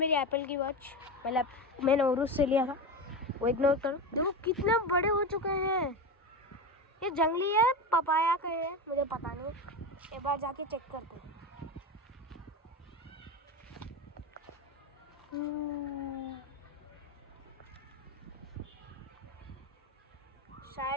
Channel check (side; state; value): both; normal; correlation 0.21